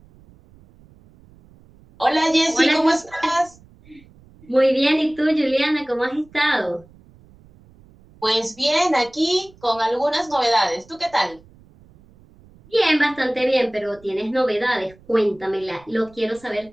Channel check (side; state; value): right; noise; rumble, 27 dB below the sound